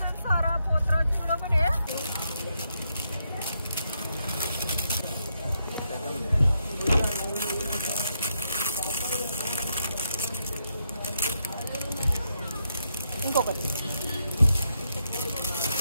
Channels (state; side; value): inverted; both; correlation -0.80